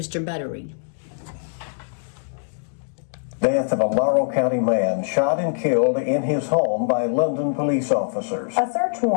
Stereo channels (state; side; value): silent; right; digital silence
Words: Buttery. Death of a Laurel County man shot and killed in his home by London police officers. A search